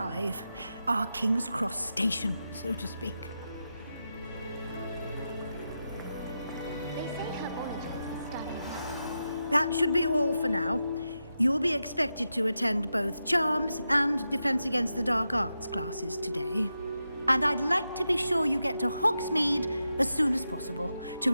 Our King's Cross station, so to speak. That should be all for now. You'll be expected to attend both Charms and Defense Against the Dark Arts classes today. And I'd like to be sure you get to Hogsmeade as soon as possible to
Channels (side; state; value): both; inverted; correlation -0.89